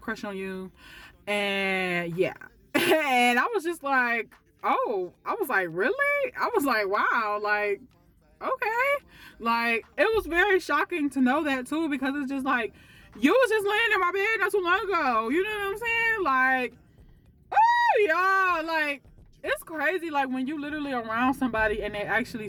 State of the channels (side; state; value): both; identical; correlation 1.00